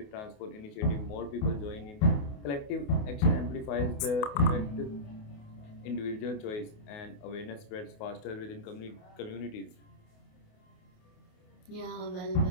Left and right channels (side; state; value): right; late; 28 ms